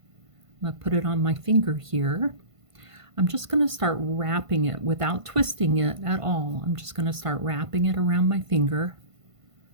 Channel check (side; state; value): left; late; 1.5 ms